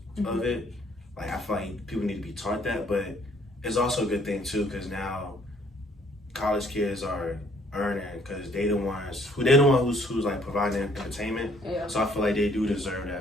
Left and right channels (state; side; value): normal; both; correlation 0.63